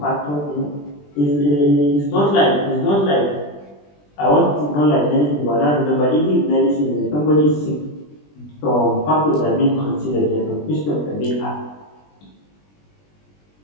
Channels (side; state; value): right; late; 20 ms